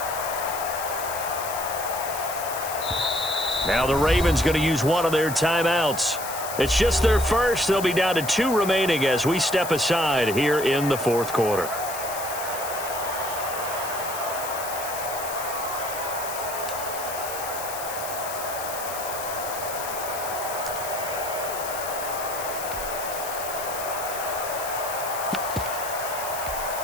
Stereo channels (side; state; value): left; noise; hiss, 8 dB below the sound